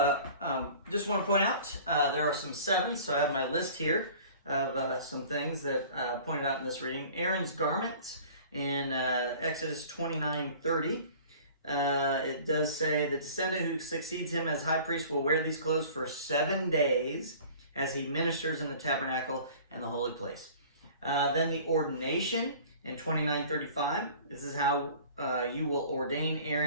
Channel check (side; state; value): both; inverted; correlation -0.46